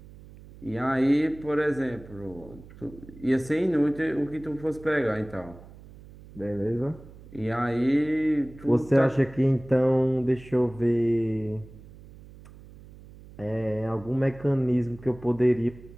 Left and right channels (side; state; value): right; noise; hum, 20 dB below the sound